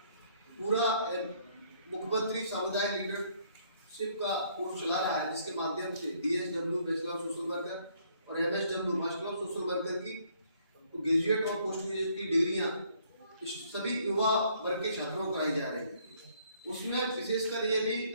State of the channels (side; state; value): both; inverted; correlation -0.66